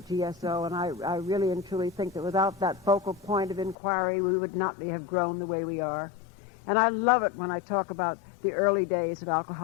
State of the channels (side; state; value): right; drops out; at 3.8 s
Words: GSO, and I really and truly think that without that focal point of inquiry, we would not have grown the way we are. And I love it when I talk about the early days of